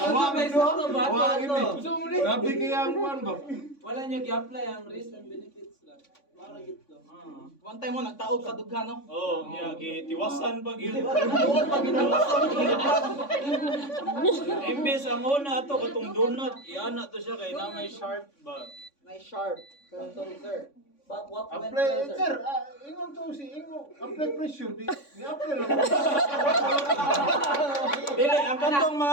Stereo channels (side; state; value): right; late; 3.5 ms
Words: Grabe kaya ang kuwan ba? Wala nyo i-apply ang risk and benefits lang. Para gito. One time mo nagtaob sa dughan no? Oh, niya gitiwasan pag yun. Tuod pag Imbes ang una ato katong donut, iana to siya kay na may sharp ba. Nice sharp. Sorry sir. But what went Apply, well, sir. Ingon to si Ingo. Apply pressure. Di-apply lang. Dili ang katong